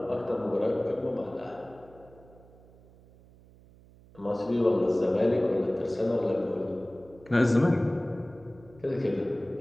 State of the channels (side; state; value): right; noise; hum, 25 dB below the sound